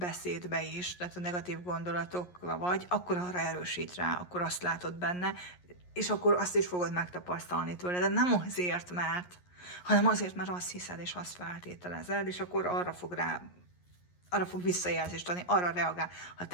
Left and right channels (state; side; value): late; right; 11 ms